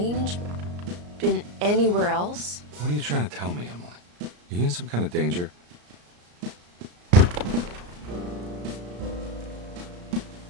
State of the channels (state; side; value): late; left; 34 ms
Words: Been anywhere else? What are you trying to tell me, Emily? Are you in some kind of danger? Let